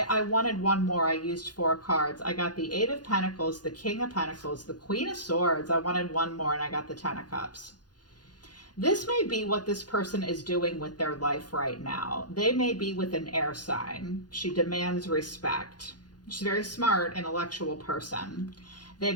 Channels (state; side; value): late; right; 0.69 ms